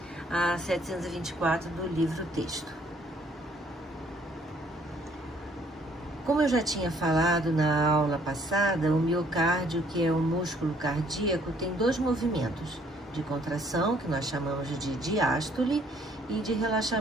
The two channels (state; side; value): normal; both; correlation 0.63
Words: a 724 do livro-texto. Como eu já tinha falado na aula passada, o miocárdio, que é o músculo cardíaco, tem dois movimentos, de contração, que nós chamamos de diástole, e de